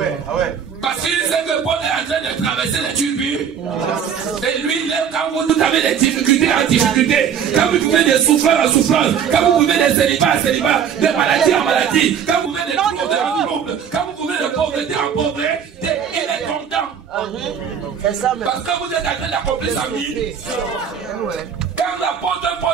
Parce qu'il sait que Paul est en train de traverser les tribus. Et lui, quand vous avez des difficultés en difficulté, quand vous vivez des souffrances en souffrance, quand vous vivez des célibats en célibat, des maladies en maladie, quand vous vivez des troubles en troubles, quand vous vivez de pauvreté en pauvreté, il est content. Parce que vous êtes en train d'accomplir sa mission. Quand l'apôtre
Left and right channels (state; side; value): quieter; left; 7.8 dB